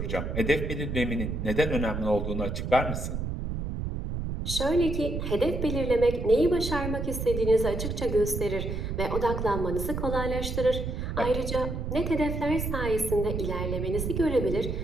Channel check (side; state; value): right; noise; rumble, 3 dB below the sound